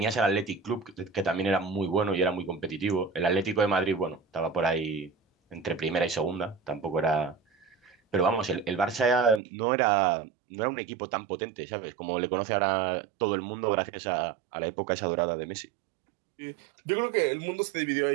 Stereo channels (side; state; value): left; drops out; at 9.4 s